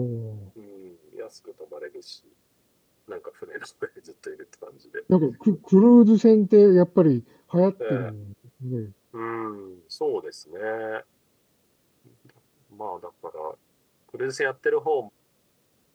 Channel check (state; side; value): identical; both; correlation 1.00